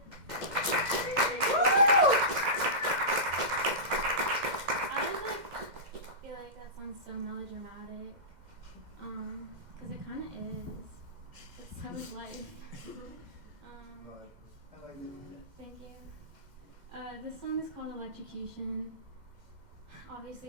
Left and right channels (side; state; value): left; late; 2.1 ms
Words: I feel like that song's so melodramatic, because it kind of is. But so is life. I like it. Thank you. This song is called Electrocution. Obviously,